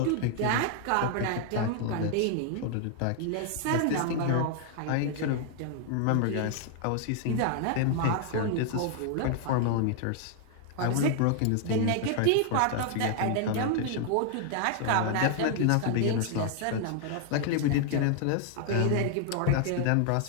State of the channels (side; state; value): both; different; correlation 0.00